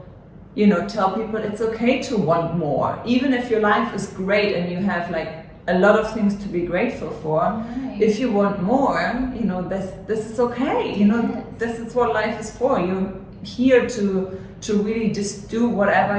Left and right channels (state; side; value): identical; both; correlation 1.00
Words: you know, tell people it's okay to want more. Even if your life is great and you have like a lot of things to be grateful for, if you want more, you know, this is okay. You know, this is what life is for. You're here to to really just do whatever